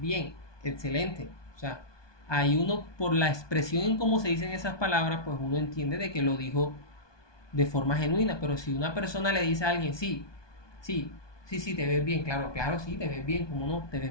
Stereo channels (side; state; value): right; late; 1.2 ms